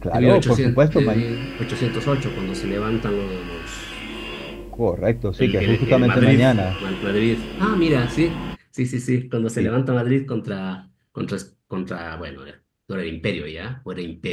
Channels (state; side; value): identical; both; correlation 1.00